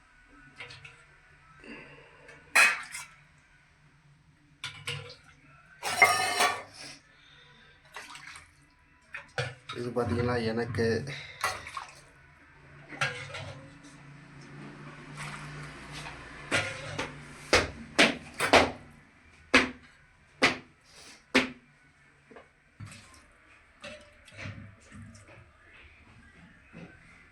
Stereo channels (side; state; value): both; identical; correlation 1.00